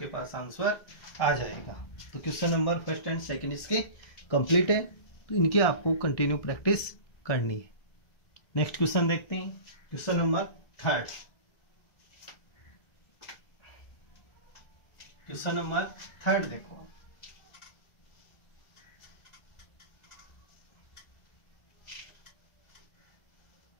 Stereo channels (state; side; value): late; right; 1.6 ms